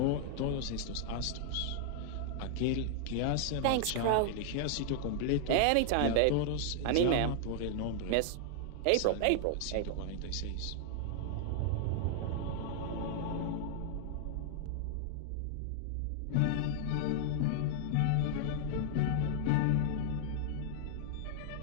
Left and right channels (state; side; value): different; both; correlation -0.01